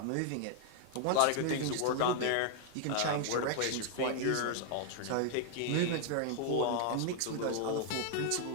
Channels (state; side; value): different; both; correlation 0.00